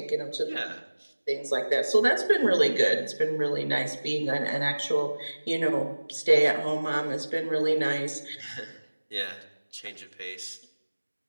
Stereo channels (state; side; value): inverted; both; correlation -1.00